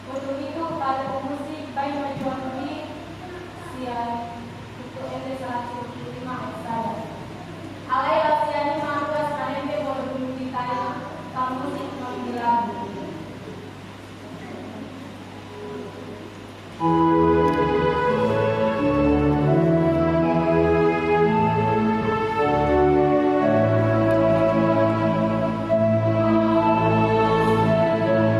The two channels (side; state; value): both; identical; correlation 1.00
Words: Untuk itu, pada pemusik baik majuan ini siap untuk NT 175 saya. Alailah siani mantuas kanembe boleh ditanya kamusik mengilagu.